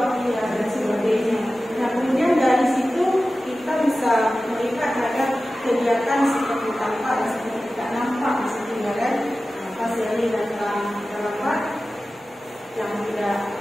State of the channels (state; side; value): normal; both; correlation 0.95